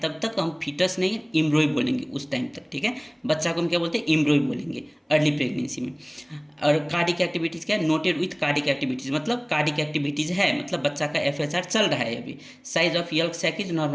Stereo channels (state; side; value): identical; both; correlation 1.00